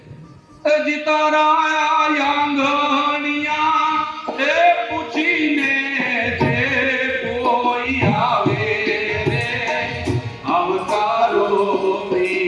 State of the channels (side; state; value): both; identical; correlation 1.00